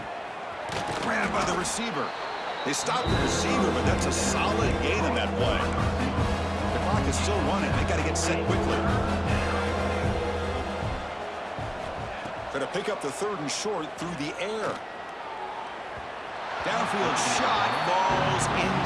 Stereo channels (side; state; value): both; identical; correlation 1.00